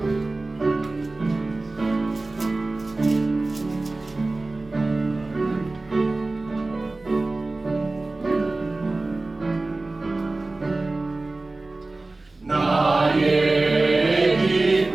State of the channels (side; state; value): left; quieter; 3.2 dB